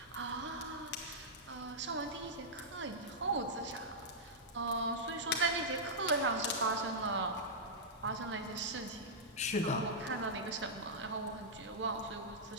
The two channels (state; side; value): normal; both; correlation -0.09